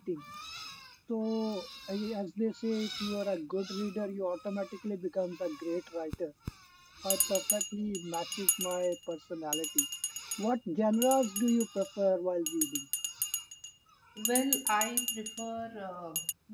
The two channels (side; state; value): both; identical; correlation 1.00